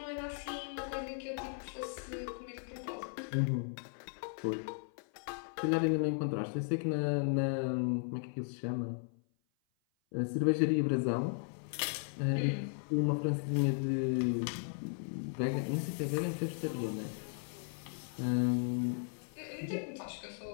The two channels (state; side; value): silent; right; 54 dB below the other